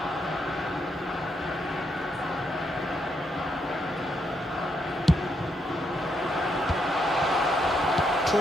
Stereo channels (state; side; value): normal; both; correlation 0.78